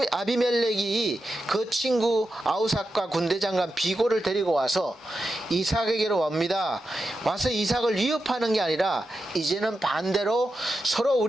아비멜렉이 그 친구 아우삭과 군대장관 비고를 데리고 와서 이삭에게로 옵니다. 와서 이삭을 위협하는 게 아니라 이제는 반대로 서로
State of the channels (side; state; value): both; normal; correlation 0.89